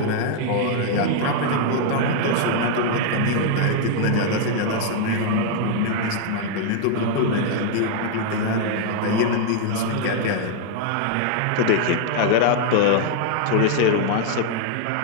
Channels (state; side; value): different; both; correlation 0.00